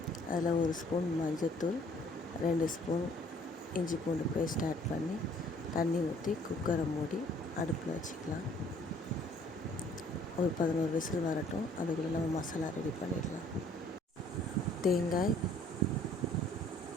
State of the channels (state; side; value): normal; both; correlation 0.59